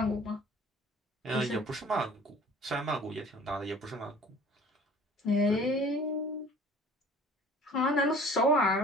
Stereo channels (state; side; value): normal; both; correlation 0.48